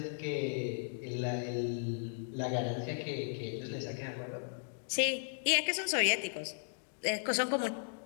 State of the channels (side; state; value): right; silent; digital silence